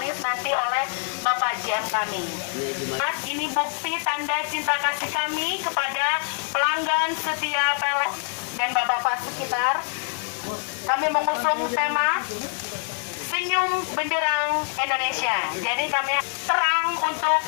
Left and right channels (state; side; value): silent; right; 62 dB below the other